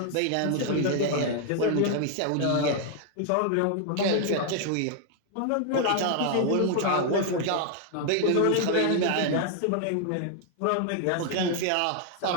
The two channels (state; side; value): different; both; correlation 0.00